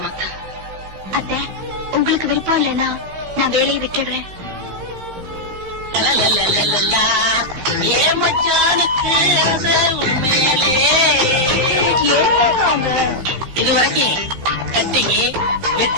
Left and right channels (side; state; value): left; late; 15 ms